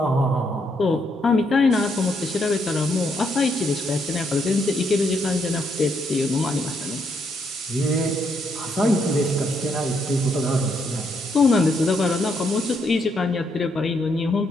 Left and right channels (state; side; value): normal; both; correlation 0.75